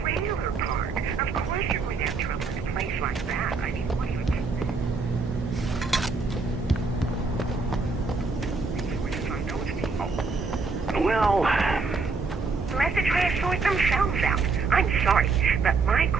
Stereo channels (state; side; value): quieter; left; 4.3 dB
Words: park. Of course you wouldn't have trouble in a place like that. I mean, what do you think? Where to find those people? Well... Let the trash sort themselves out. I'm sorry, but my